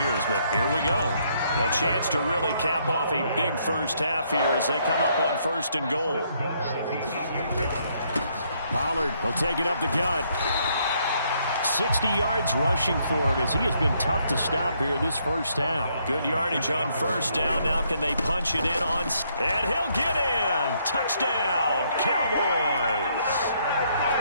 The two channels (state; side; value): inverted; both; correlation -0.71